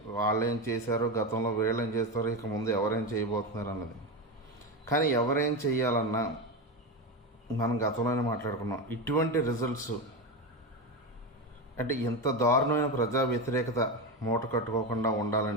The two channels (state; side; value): normal; both; correlation 0.17